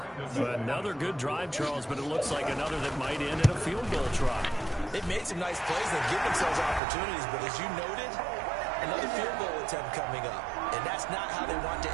Another good drive, Charles, but it looks like another that might end in a field goal try. They've made some nice plays. They've given themselves opportunities, but as you noted, Another field goal attempt coming up. And that's not how they want to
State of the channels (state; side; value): drops out; left; at 6.8 s